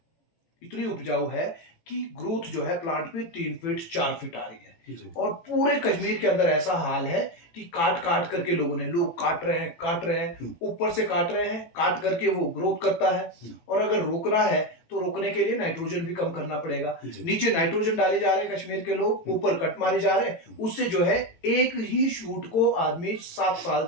इतनी उपजाऊ है कि ग्रोथ जो है प्लांट पे 3 फीट 4 फीट आ रही है। और पूरे कश्मीर के अंदर ऐसा हाल है कि काट काट करके लोग काट रहे हैं, ऊपर से काट रहे हैं, काट करके वो ग्रोथ करता है। और अगर रोकना है तो रोकने के लिए नाइट्रोजन भी कम करना पड़ेगा। नीचे नाइट्रोजन डाले जा रहे हैं कश्मीर के लोग, ऊपर कट मारे जा रहे हैं, उससे जो है एक ही शूट को आदमी 7 साल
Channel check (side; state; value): right; late; 18 ms